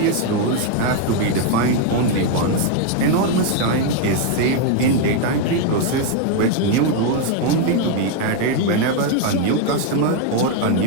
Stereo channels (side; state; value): both; different; correlation 0.01